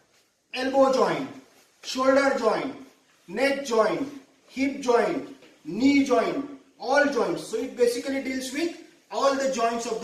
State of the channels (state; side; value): identical; both; correlation 1.00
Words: elbow joint, shoulder joint, neck joint, hip joint, knee joint, all joints. So it basically deals with all the joints of